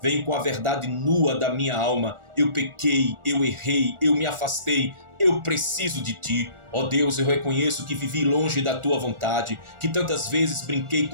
venho com a verdade nua da minha alma. Eu pequei, eu errei, eu me afastei, eu preciso de ti. Ó Deus, eu reconheço que vivi longe da tua vontade, que tantas vezes brinquei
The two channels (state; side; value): late; left; 1.4 ms